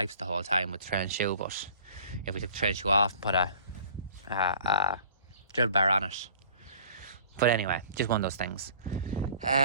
the whole time with the trail and shoe, but if we took the trail and shoe off and put a drill bar on it. But anyway, just one of those things.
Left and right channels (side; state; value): both; inverted; correlation -0.49